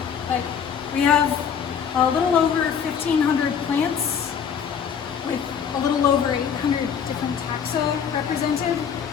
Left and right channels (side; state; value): right; quieter; 7.4 dB